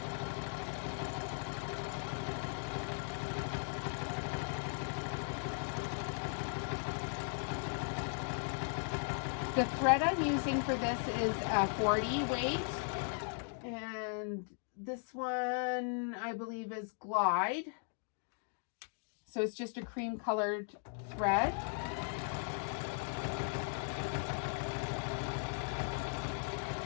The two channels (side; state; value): right; silent; 52 dB below the other